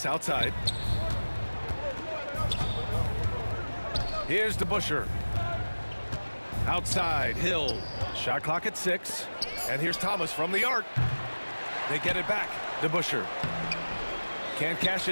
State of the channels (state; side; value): inverted; both; correlation -1.00